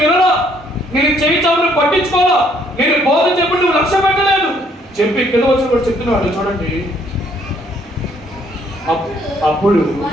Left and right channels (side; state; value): both; normal; correlation 0.66